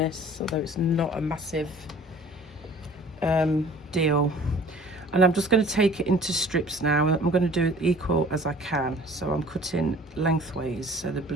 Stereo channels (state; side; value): normal; both; correlation 0.48